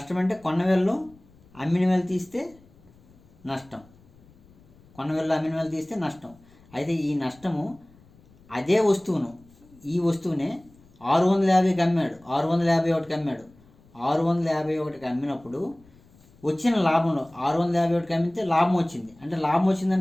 అంటే కొన్న వేలలో అమ్మిన వేలు తీస్తే నష్టం, కొన్న వేలలో అమ్మిన వేలు తీస్తే నష్టం. అయితే ఈ నష్టము అదే వస్తువును, ఈ వస్తువునే 650కి అమ్మాడు, 651కి అమ్మాడు. 651కి అమ్మినప్పుడు వచ్చిన లాభంలో 651కి అమ్మితే లాభం వచ్చింది. అంటే లాభం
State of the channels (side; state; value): left; noise; rumble, 28 dB below the sound